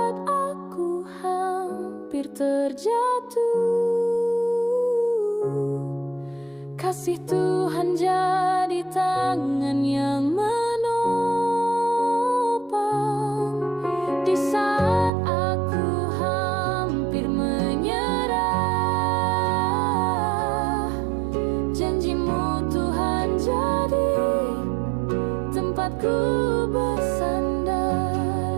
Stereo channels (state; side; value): drops out; left; at 15.1 s